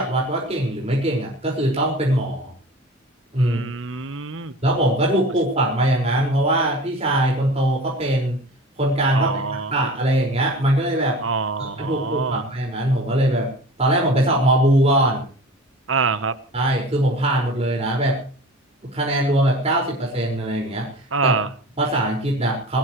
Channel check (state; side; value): normal; both; correlation 0.38